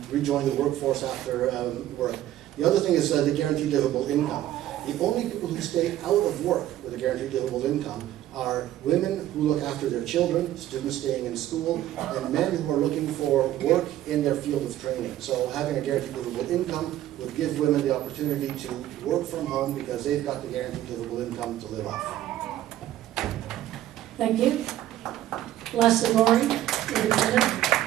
rejoin the workforce after work. The other thing is the guaranteed livable income. The only people who stay out of work with a guaranteed livable income are women who look after their children, students staying in school, and men who are looking for work in their field of training. So having a guaranteed livable income would give women the opportunity to work from home because they've got the guaranteed livable income to live off. Thank you. Leslie Laurie, Independent.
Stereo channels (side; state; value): left; quieter; 13.2 dB